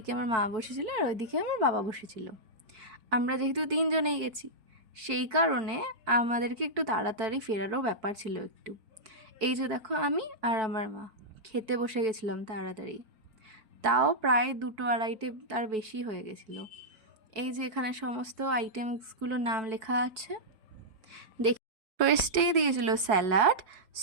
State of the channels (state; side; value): late; left; 4.7 ms